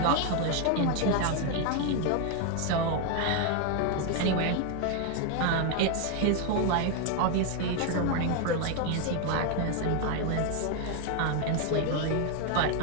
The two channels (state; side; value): different; both; correlation 0.01